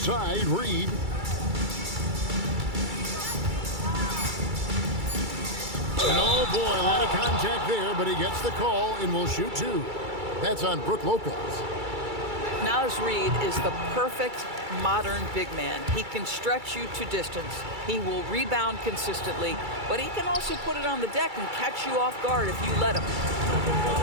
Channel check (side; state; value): left; late; 2.3 ms